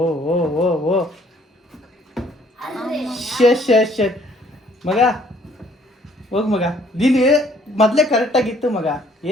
ओ ओ ओ ओ ಶಟ್ ಮಗ, ಹೋಗು ಮಗ, ನೀನು ಮೊದಲೇ ಕರೆಕ್ಟ್ ಆಗಿತ್ತು ಮಗ,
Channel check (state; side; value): normal; both; correlation 0.61